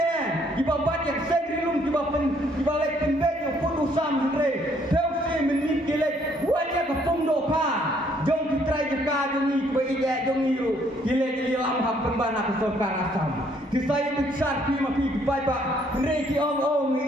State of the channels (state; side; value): normal; both; correlation 0.66